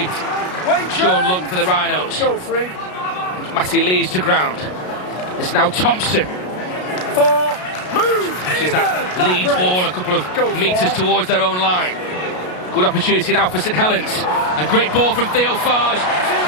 Sean Lunt for the Rhinos. Matty Lees to ground. It's now Thompson. She's that Leeds ball a couple of metres towards their own line. Good opportunity now for St Helens. A great ball from Theo Fage.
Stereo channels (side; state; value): right; late; 33 ms